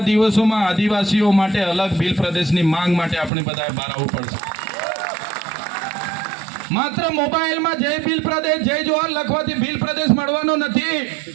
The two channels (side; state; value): left; drops out; at 3.3 s